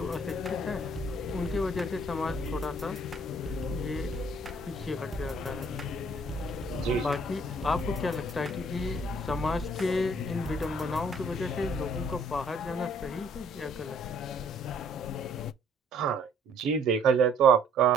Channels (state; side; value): normal; both; correlation 0.61